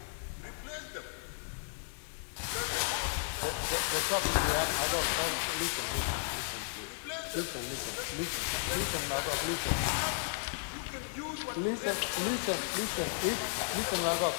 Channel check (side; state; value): right; silent; 55 dB below the other